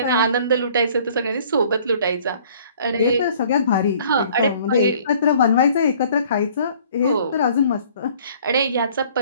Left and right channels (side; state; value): both; inverted; correlation -0.55